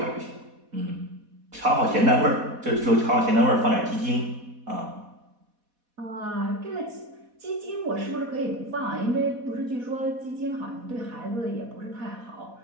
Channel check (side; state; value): left; late; 4.1 ms